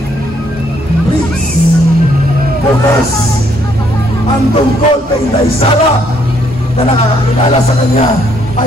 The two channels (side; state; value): both; normal; correlation 0.69